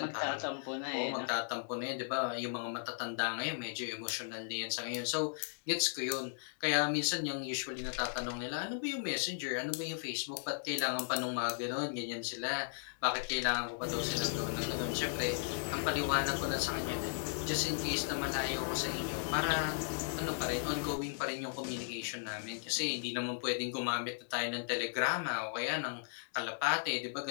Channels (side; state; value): right; silent; digital silence